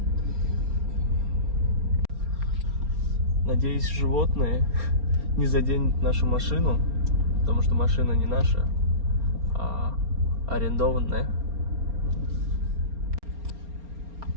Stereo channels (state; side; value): late; left; 4.3 ms